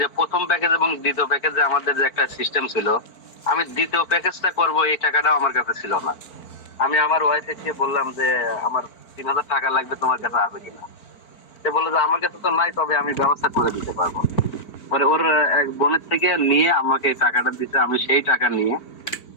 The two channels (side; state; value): right; late; 4.5 ms